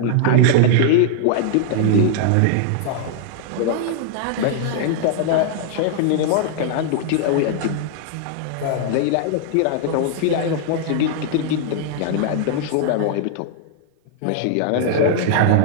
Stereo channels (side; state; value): both; different; correlation -0.01